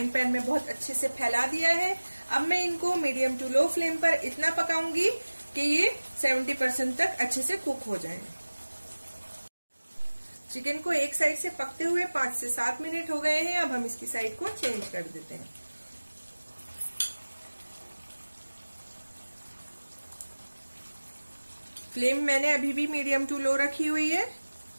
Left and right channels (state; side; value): inverted; both; correlation -1.00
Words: पैन में बहुत अच्छे से फैला दिया है। अब मैं इनको मीडियम टू लो फ्लेम पर इतना पकाऊंगी कि ये 70% तक अच्छे से कुक हो जाएं। चिकन को एक साइड से पकते हुए 5 से 7 मिनट हो गए हैं। अब हम इसकी साइड को चेंज कर देते हैं। फ्लेम मैंने अभी भी मीडियम टू लो रखी हुई है।